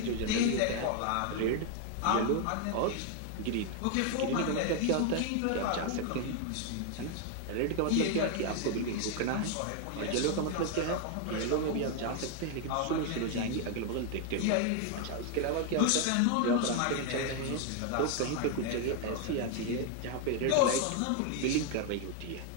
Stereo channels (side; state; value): both; different; correlation 0.00